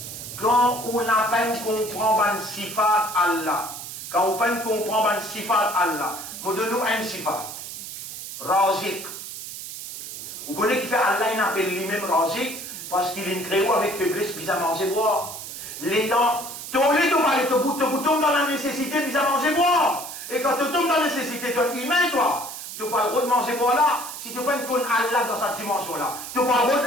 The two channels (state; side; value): noise; right; hiss, 10 dB below the sound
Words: quand on n'a pas comprend le sifat Allah. Quand on peine comprendre un sifat Allah, nous donnons un sifat. Razik. Vous connaissez qui fait Allah, il appelle lui-même Razik, parce qu'il est créé avec faiblesse, puis à manger boire. Les temps, tu tombes dans la nécessité, puis à manger boire. Et quand tu tombes dans la nécessité, tu es humain, toi. Tu n'as pas le droit de manger boire là, si tu peine connaître Allah dans cette dimension-là. Tu n'as pas le droit de